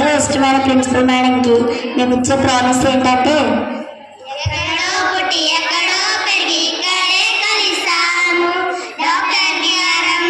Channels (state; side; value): identical; both; correlation 1.00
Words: ఇష్టమైన ప్రిన్సిపల్ మేడంకి మేము ఇచ్చే ప్రామిస్ ఏంటంటే,